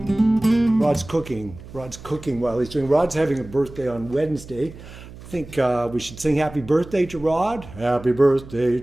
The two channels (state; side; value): noise; right; hum, 17 dB below the sound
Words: Rod's cooking while he's doing. Rod's having a birthday on Wednesday. I think we should sing happy birthday to Rod. Happy birthday